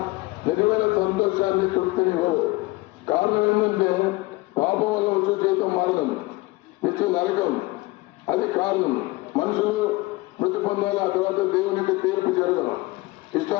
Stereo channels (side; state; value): right; quieter; 21.8 dB